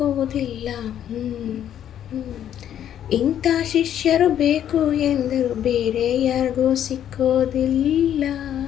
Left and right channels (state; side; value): quieter; right; 10.3 dB